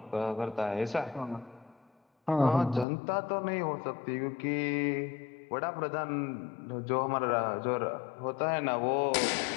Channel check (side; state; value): right; drops out; at 2.9 s